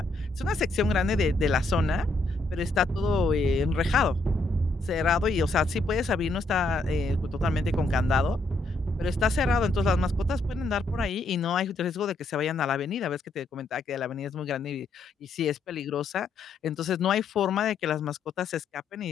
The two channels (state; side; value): quieter; right; 3.0 dB